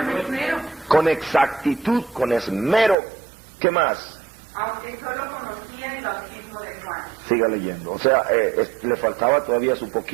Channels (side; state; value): left; drops out; at 3.0 s